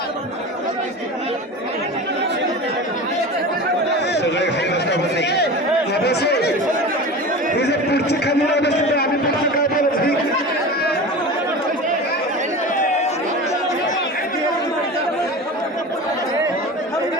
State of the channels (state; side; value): normal; both; correlation 0.31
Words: सगळे खाली बसता बसले हे जे पुढची खाली राहिलं असते आम्ही पुढचं काय बोलत